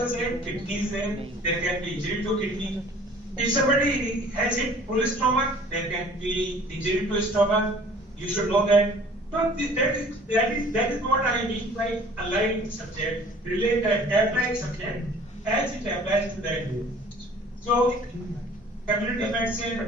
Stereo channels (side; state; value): both; normal; correlation 0.50